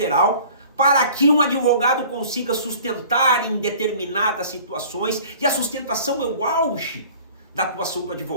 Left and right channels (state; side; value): inverted; both; correlation -0.47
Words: para que um advogado consiga sustentar em determinadas situações, e a sustentação é o auge da atuação do